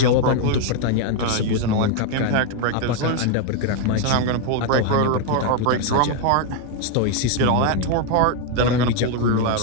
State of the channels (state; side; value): different; both; correlation 0.01